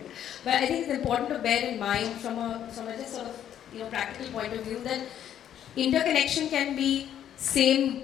But I think it's important to bear in mind from a just sort of practical point of view that interconnection can be same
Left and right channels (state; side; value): quieter; right; 10.3 dB